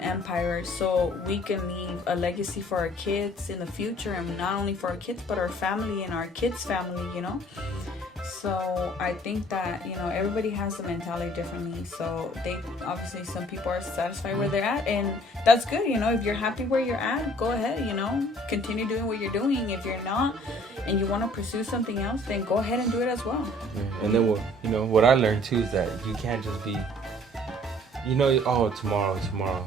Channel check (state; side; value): normal; both; correlation 0.56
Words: empire, so we can leave a legacy for our kids in the future, and not only for our kids but our family and our kids' family, you know. So I think that, you know, everybody has the mentality differently. So they obviously, some people are satisfied where they're at, and that's good. You know, if you're happy where you're at, go ahead, you know, continue doing what you're doing. If you're not and you want to pursue something else, then go ahead and do it as well. And then what I learned too is that you can't just be, you know, oh, tomorrow